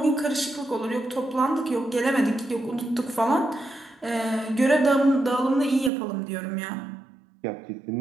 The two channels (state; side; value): drops out; left; at 5.9 s